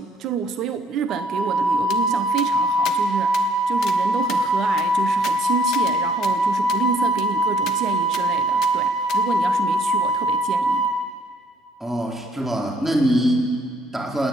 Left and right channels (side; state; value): both; normal; correlation 0.64